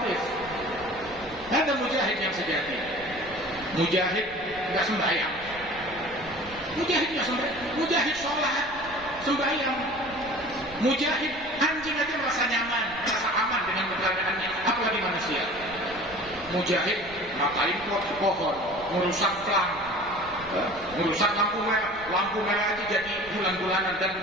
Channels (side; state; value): right; noise; rumble, 19 dB below the sound